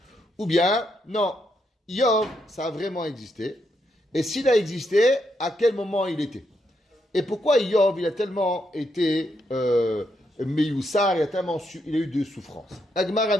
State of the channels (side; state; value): both; normal; correlation 0.79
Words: Ou bien, non, Iyov, ça a vraiment existé. Et s'il a existé, à quel moment il était? Et pourquoi Iyov, il a tellement été meyoussar, il a eu de souffrances. La Gemara